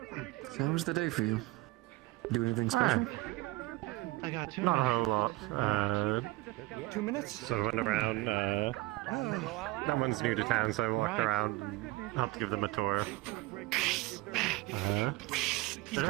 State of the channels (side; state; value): left; quieter; 20.3 dB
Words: So how was the day for you? Do anything special? I got 2 Not a minutes. whole lot. 2 minutes? So I went around. That one's new to town, so I walked around and helped give them a tour. They're